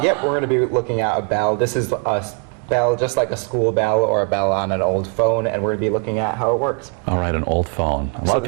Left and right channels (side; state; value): left; quieter; 36.9 dB